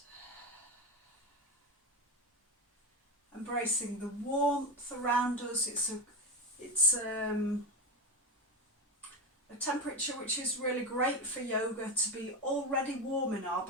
And embracing the warmth around us. It's a temperature which is really great for yoga, to be already warm in our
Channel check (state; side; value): normal; both; correlation 0.18